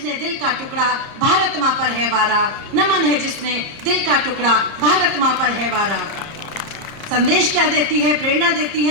दिल का टुकड़ा भारत माँ पर है वारा, नमन है जिसने दिल का टुकड़ा भारत माँ पर है वारा। संदेश क्या देती है, प्रेरणा देती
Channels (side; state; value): left; late; 30 ms